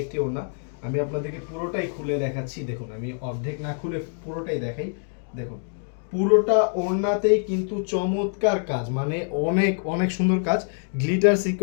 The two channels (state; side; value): silent; right; 57 dB below the other